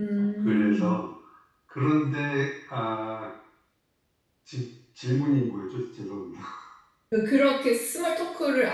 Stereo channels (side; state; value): both; identical; correlation 1.00